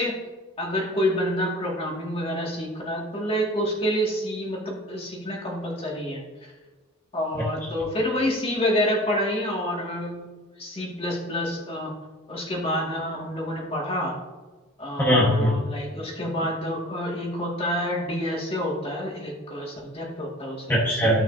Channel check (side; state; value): both; normal; correlation 0.43